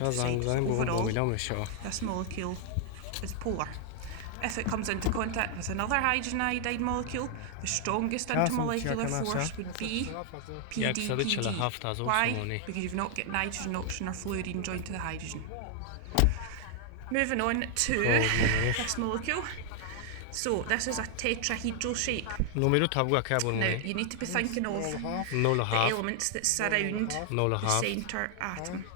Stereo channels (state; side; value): different; both; correlation 0.00